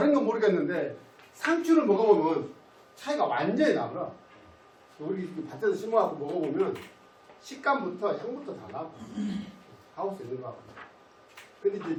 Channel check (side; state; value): both; identical; correlation 1.00